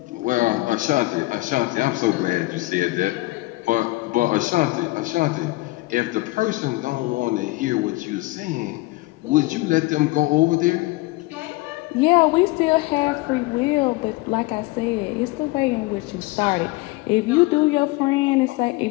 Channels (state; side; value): quieter; right; 21.3 dB